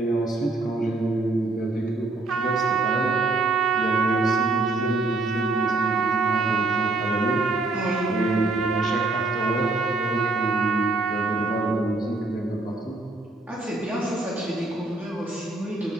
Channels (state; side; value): quieter; left; 3.2 dB